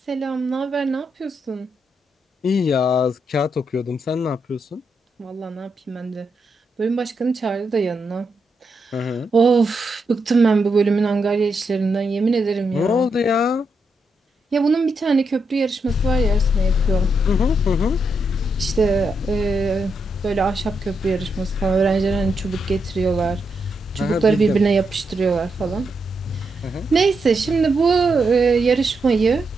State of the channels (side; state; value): both; normal; correlation 0.82